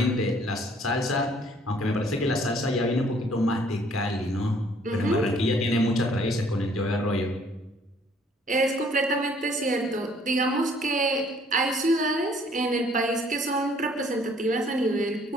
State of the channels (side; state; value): both; normal; correlation 0.60